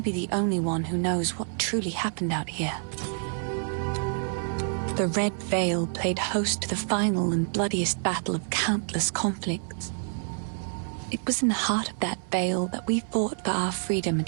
be the only one who knows what truly happened out here. The Red Veil played host to the final and bloodiest battle of countless conflicts. It was in the heart of that veil that we fought for our freedom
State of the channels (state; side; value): silent; left; 60 dB below the other